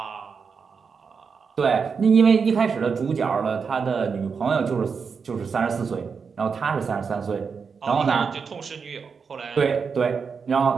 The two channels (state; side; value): quieter; left; 5.7 dB